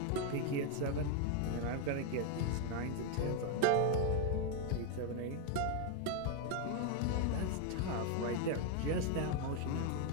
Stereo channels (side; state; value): both; different; correlation 0.01